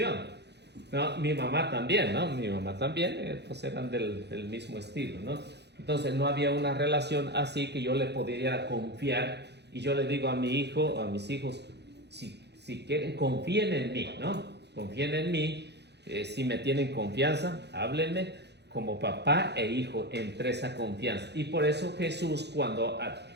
No, mi mamá también, ¿no? Mi mamá también, pues eran del mismo estilo, ¿no? Entonces no había una relación así que yo le pudiera confiar y yo le digo a mi hijo, a mis hijos, si quieren, confíen en mí, ¿no? Confíen en mí, si me tienen confianza, háblenme como papá e hijo entre esa confianza. Y por eso Jesús cuando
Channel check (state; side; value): late; left; 0.49 ms